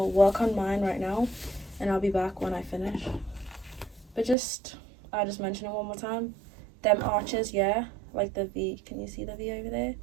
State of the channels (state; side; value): drops out; left; at 4.4 s